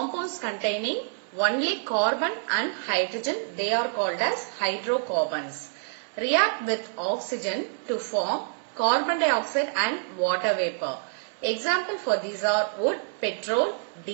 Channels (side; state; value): left; silent; 60 dB below the other